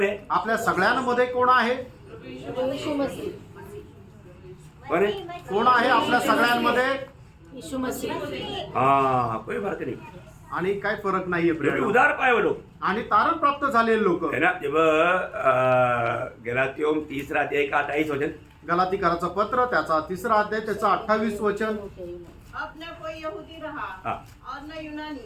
है? आपल्या सगळ्यांमध्ये कोण आहे? यीशु मसीह. कौन है? कोण आहे आपल्या सगळ्यांमध्ये? यीशु मसीह. हाँ, कोई फर्क नहीं. आणि काय फरक नाहीये क्योंकि प्रिय. उधार पाए वो लोग, आणि तारण प्राप्त झालेले लोक. है ना. जब गलातियों 3:28 गलातीकराचं पत्र त्याचा 3 त्याचा 28 अब न कोई यहूदी रहा हाँ. और न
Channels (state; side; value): identical; both; correlation 1.00